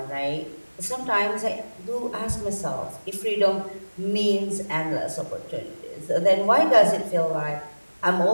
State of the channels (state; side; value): inverted; both; correlation -1.00